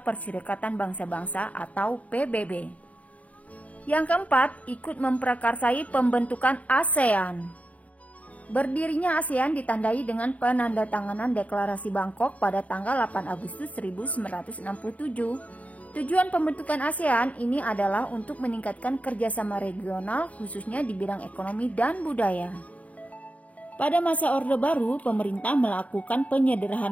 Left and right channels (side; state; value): right; late; 0.069 ms